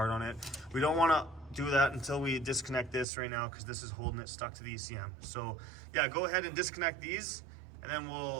on it. We don't want to do that until we disconnect this right now, because this is holding it stuck to the ECM. So yeah, go ahead and disconnect these, and then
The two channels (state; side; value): drops out; left; at 3.1 s